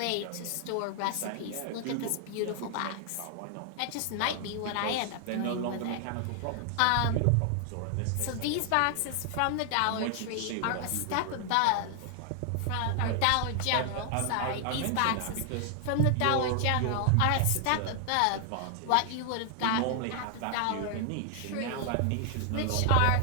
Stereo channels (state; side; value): different; both; correlation 0.00